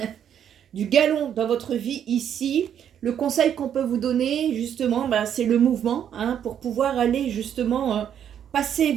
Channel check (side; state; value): left; quieter; 9.2 dB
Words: Du galon dans votre vie ici. Le conseil qu'on peut vous donner justement, c'est le mouvement, hein, pour pouvoir aller justement passer.